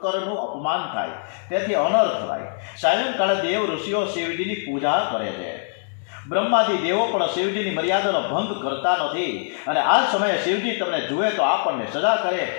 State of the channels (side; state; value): right; silent; digital silence